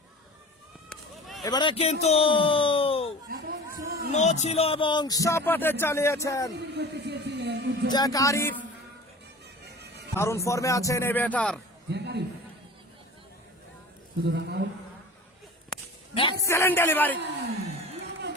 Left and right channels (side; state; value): both; normal; correlation 0.39